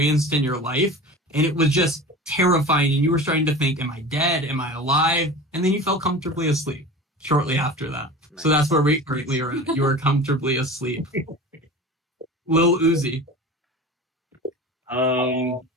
in your life. And it was just terrifying. And you were starting to think, am I dead? Am I alive? And then you fell comfortably asleep shortly after that. Nice. So that's where we currently are at. You are comfortably asleep. Lil Uzi.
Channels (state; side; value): normal; both; correlation 0.35